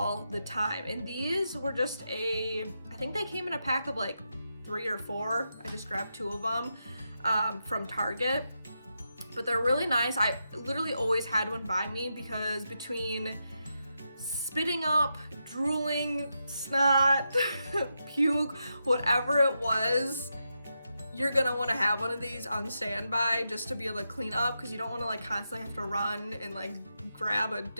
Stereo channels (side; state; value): both; inverted; correlation -0.86